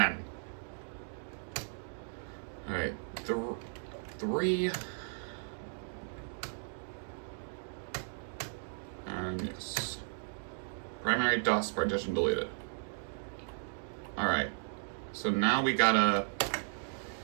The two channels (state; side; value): silent; left; digital silence